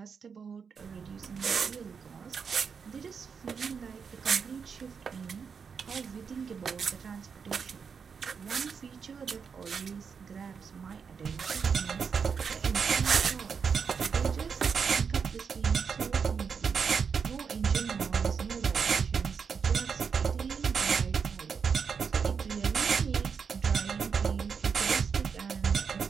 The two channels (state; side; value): quieter; left; 6.1 dB